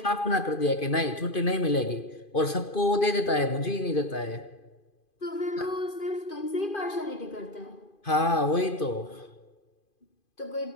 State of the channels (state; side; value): late; right; 2.5 ms